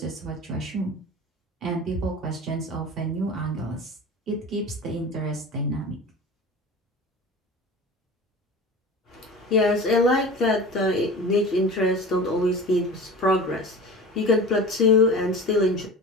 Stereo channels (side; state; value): both; normal; correlation 0.35